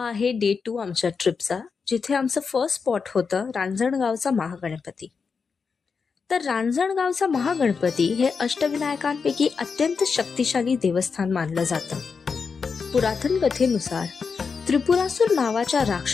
आहे डे 2 आमच्या ट्रिपचा, जिथे आमचं फर्स्ट स्पॉट होतं रांजणगावचा महागणपती. तर रांजणगावचा महागणपती हे अष्टविनायकांपैकी अत्यंत शक्तिशाली देवस्थान मानलं जातं. पुरातन कथेनुसार त्रिपुरासूर नावाच्या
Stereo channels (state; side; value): quieter; right; 5.4 dB